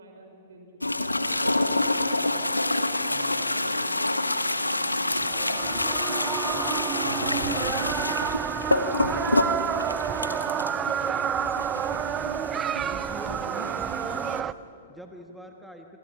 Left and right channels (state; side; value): inverted; both; correlation -0.44